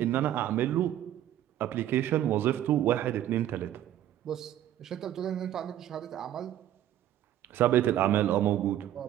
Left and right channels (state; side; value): quieter; left; 12.1 dB